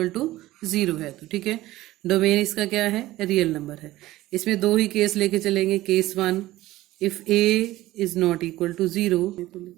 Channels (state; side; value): quieter; left; 16.6 dB